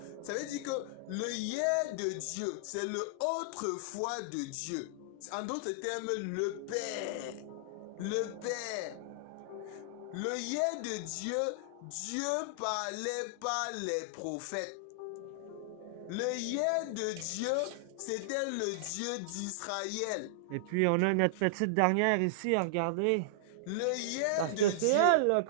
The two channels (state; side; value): different; both; correlation -0.01